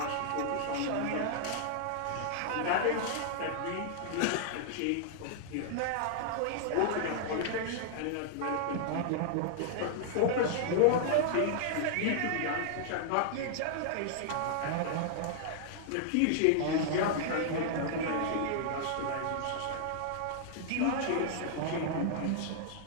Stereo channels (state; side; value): different; both; correlation -0.01